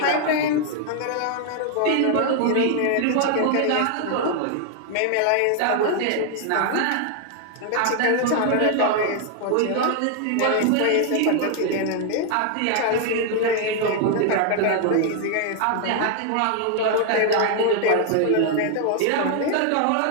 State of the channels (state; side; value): different; both; correlation 0.00